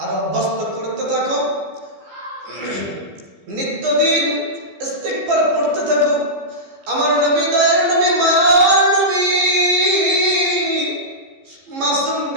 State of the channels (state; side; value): late; left; 15 ms